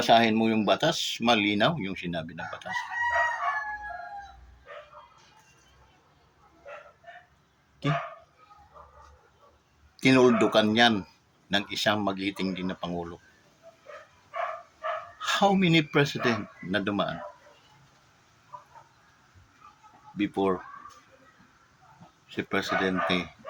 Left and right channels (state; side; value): identical; both; correlation 1.00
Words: mo yung batas, malinaw yung sinabi ng batas. Okay? Tinuldukan yan ng isang magiting din na Pangulo. How many president na dumaan before si Presidente